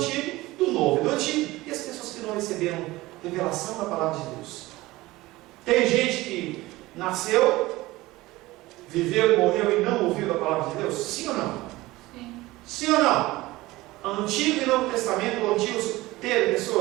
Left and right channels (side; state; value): left; quieter; 19.2 dB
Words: do Novo e do Antigo. E as pessoas que não receberam revelação da palavra de Deus. Tem gente que nasceu, viveu e morreu e não ouviu da palavra de Deus? Sim ou não? Sim ou não? Antigo e Novo Testamento, o Antigo teve